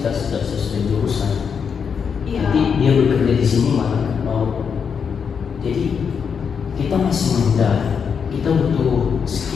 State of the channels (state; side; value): quieter; right; 6.6 dB